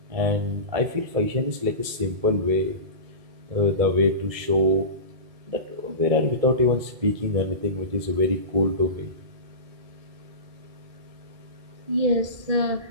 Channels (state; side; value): late; left; 2.3 ms